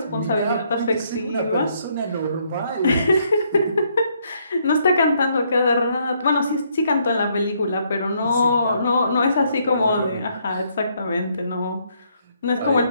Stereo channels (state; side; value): inverted; both; correlation -0.71